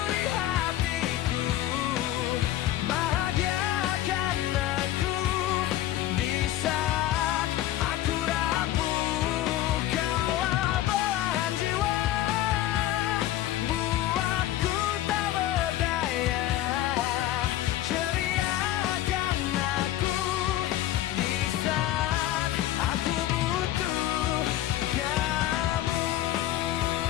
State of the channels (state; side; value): quieter; right; 13.7 dB